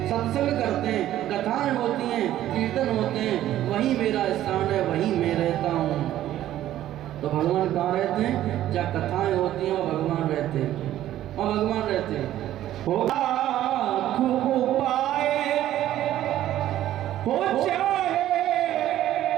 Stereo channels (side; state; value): left; quieter; 13.0 dB